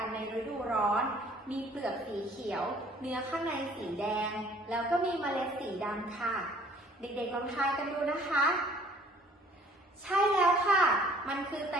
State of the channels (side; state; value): both; normal; correlation 0.55